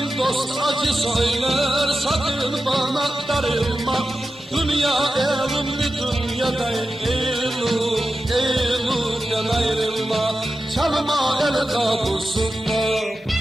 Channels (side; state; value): both; normal; correlation 0.92